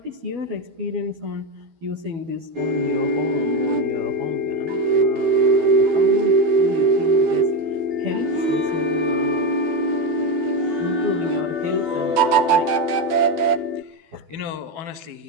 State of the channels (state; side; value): late; left; 12 ms